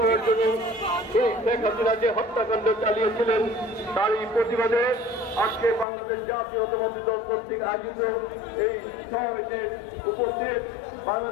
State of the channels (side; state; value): right; drops out; at 5.9 s